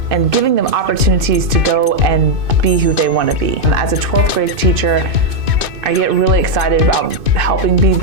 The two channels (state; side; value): late; left; 2.6 ms